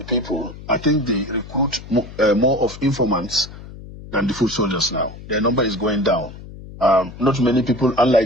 people. I think they recruit more of informants than the foot soldiers now. Their number is going down. Not many people,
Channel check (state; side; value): noise; left; hum, 15 dB below the sound